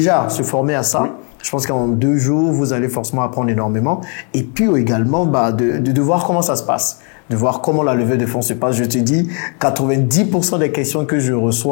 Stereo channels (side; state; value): right; quieter; 39.3 dB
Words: se former à ça. Je pense qu'en 2 jours, vous allez forcément apprendre énormément. Et puis également, de voir comment ça se passe. De voir comment la levée de fonds se passe. Je te dis, 90% des questions que je